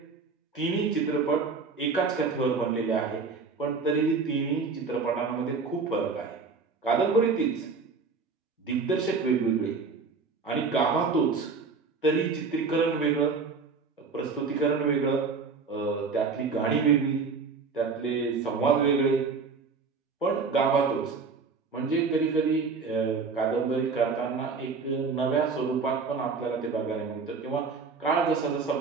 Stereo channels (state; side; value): quieter; left; 4.8 dB